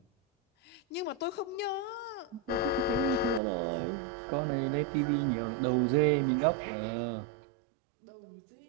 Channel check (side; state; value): left; drops out; at 3.4 s